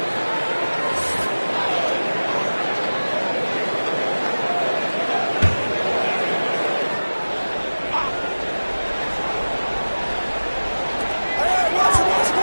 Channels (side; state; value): both; inverted; correlation -1.00